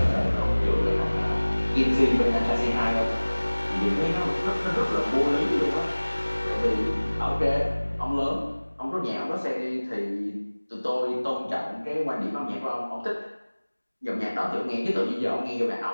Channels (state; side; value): inverted; both; correlation -1.00